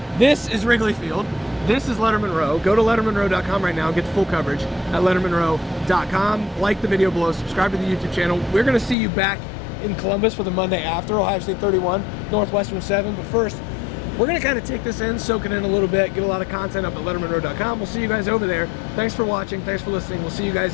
this is Wrigley Field. This is Lettermen Row. Go to lettermenrow.com right now and get the full coverage at lettermenrow.com. Like the video below, subscribe to the YouTube channel. We're going to see you back in Columbus for the Monday after Ohio State 31, Northwestern 7. But first, we're going to kind of take this in, soak it in a little bit, get a lot of content up at lettermenrow.com. We'll see you guys over there. Thanks for watching. Thanks for listening. We'll see you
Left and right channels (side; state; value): right; drops out; at 9.0 s